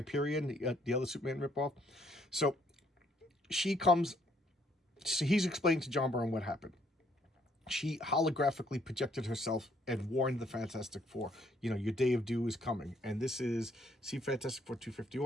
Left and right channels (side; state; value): both; normal; correlation 0.67